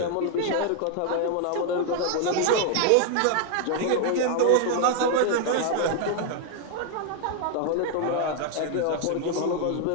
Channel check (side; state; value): both; different; correlation 0.00